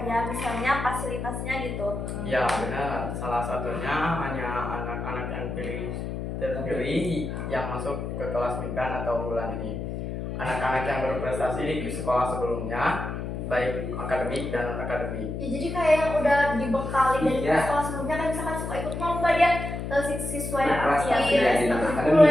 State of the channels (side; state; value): left; noise; hum, 5 dB below the sound